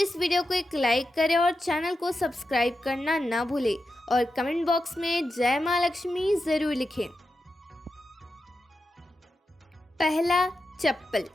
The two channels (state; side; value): normal; both; correlation 0.89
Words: वीडियो को एक लाइक करें और चैनल को सब्सक्राइब करना ना भूलें और कमेंट बॉक्स में जय माँ लक्ष्मी ज़रूर लिखें। पहला, चप्पल।